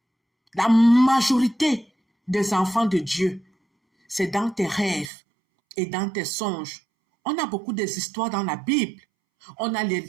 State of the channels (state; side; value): drops out; left; at 5.1 s